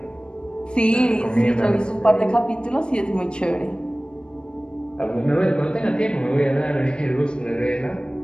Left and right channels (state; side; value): late; right; 0.052 ms